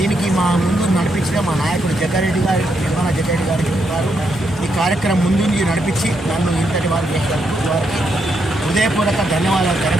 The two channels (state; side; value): normal; both; correlation 0.79